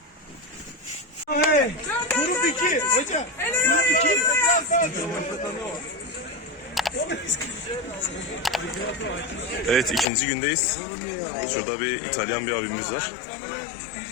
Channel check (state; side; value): drops out; right; at 10.1 s